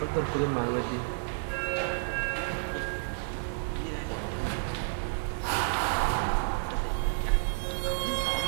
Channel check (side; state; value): left; silent; digital silence